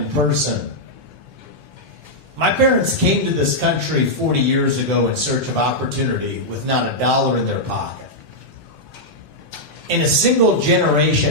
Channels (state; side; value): late; left; 2.3 ms